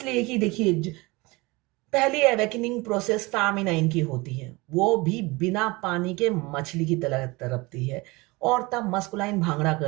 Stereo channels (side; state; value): left; quieter; 23.9 dB